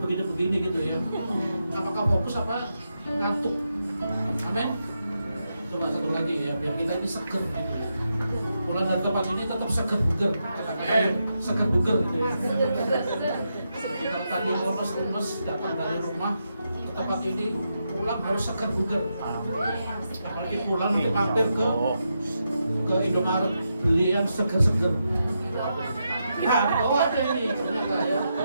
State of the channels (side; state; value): both; inverted; correlation -0.85